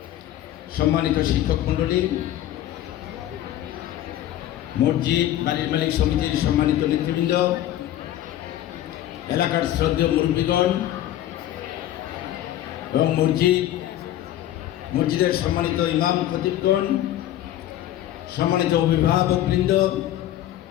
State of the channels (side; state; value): right; quieter; 12.9 dB